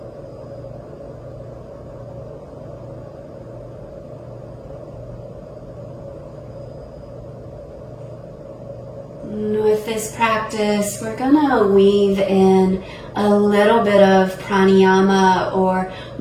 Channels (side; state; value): both; identical; correlation 1.00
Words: And with this practice, we're gonna weave in a little bit of pranayama or